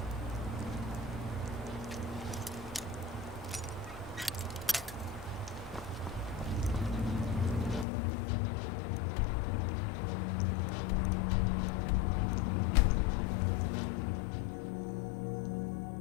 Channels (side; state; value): right; drops out; at 7.9 s